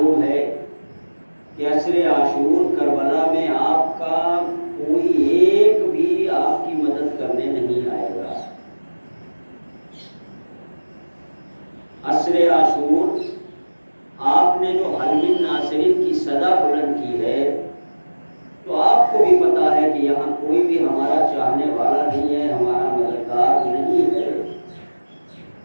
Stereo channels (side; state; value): both; inverted; correlation -1.00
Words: ہے کہ عصر عاشور کربلا میں آپ کا کوئی ایک بھی آپ کی مدد کرنے نہیں آئے گا. عصر عاشور آپ نے جو حل من ناصرین کی صدا بلند کی ہے، تو آپ کو بھی پتا ہے کہ یہاں کوئی بھی ہمارا چاہنے والا نہیں ہے، ہمارا مددگار نہیں ہے.